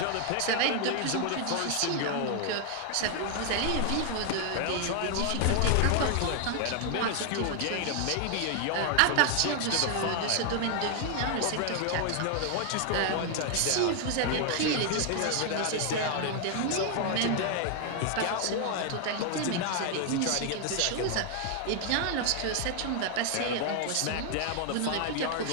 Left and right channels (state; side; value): different; both; correlation 0.00